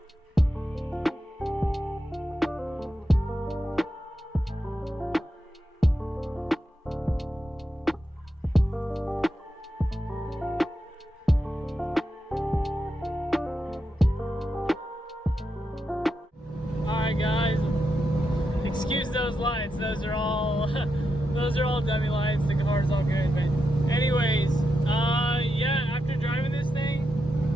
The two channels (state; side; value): normal; both; correlation 0.86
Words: Excuse those lights, those are all dummy lights. The car's all good, but anyways, yeah, after driving this